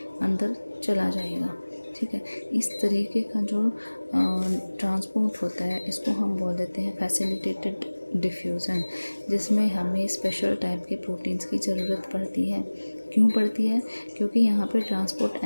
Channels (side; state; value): both; inverted; correlation -1.00